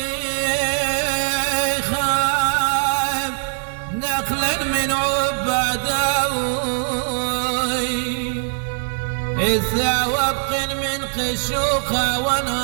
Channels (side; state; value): left; silent; 65 dB below the other